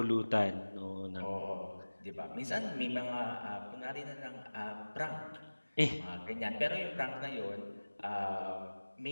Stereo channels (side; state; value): both; inverted; correlation -1.00